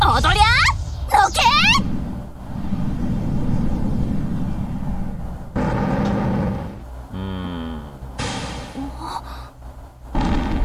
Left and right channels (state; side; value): identical; both; correlation 1.00